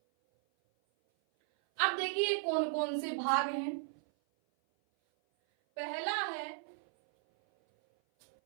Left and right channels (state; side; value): silent; left; 54 dB below the other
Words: अब देखिए कौन कौन से भाग हैं। पहला है